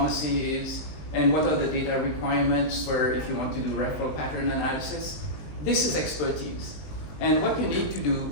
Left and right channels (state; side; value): late; right; 19 ms